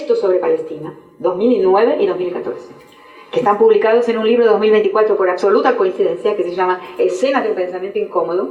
sobre Palestina, 2009 y 2014. Que están publicados en un libro de 2024 por absoluta coincidencia, que se llama Escenas de un pensamiento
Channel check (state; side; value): identical; both; correlation 1.00